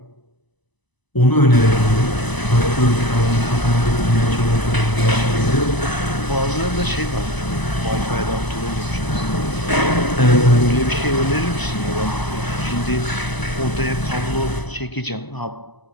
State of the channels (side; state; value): right; late; 1.0 ms